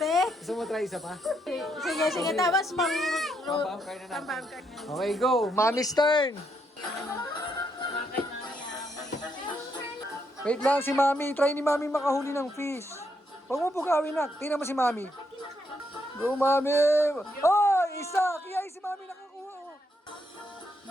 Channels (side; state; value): both; normal; correlation 0.77